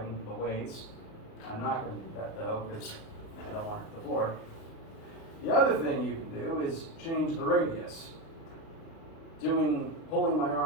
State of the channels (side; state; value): right; late; 37 ms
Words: the weights. I'm not going to do that though, because I don't want to hit the floor. The other thing you can do is change the radius. Pulling my